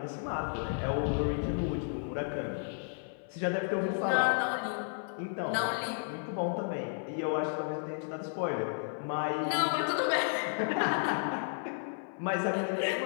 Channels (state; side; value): silent; right; 55 dB below the other